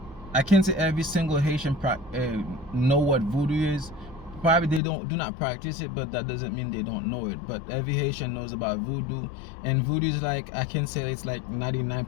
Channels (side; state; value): right; drops out; at 4.8 s